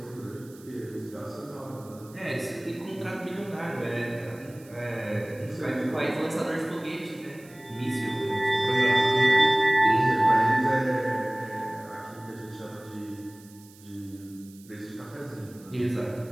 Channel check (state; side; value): noise; right; hiss, 24 dB below the sound